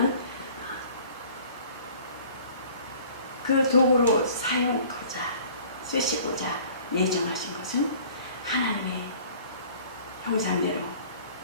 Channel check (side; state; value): both; inverted; correlation -0.49